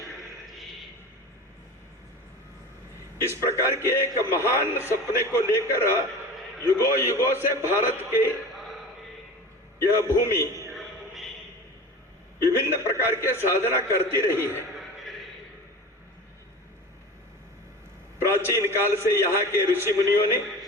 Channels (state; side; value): normal; both; correlation 0.34